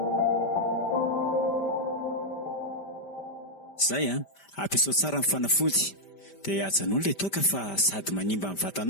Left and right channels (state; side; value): late; right; 5.1 ms